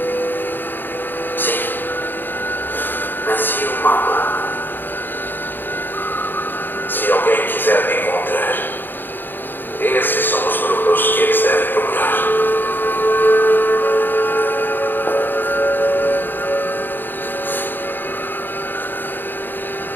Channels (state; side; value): late; right; 0.094 ms